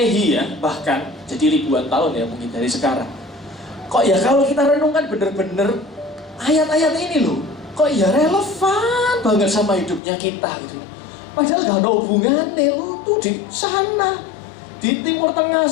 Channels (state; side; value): drops out; right; at 10.0 s